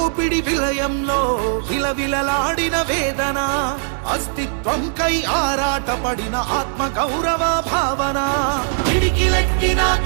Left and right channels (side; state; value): left; silent; 59 dB below the other